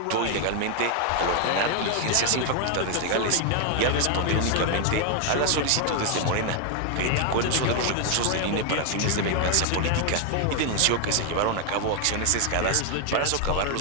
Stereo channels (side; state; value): both; different; correlation 0.00